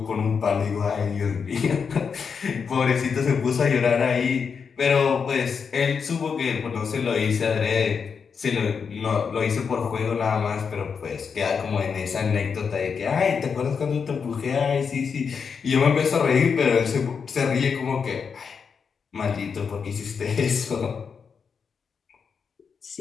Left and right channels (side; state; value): right; quieter; 6.1 dB